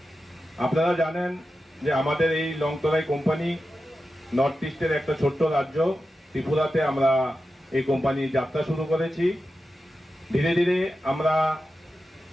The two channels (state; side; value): normal; both; correlation 0.91